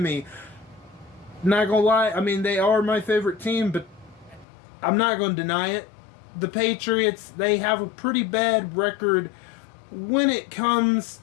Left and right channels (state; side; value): drops out; right; at 4.5 s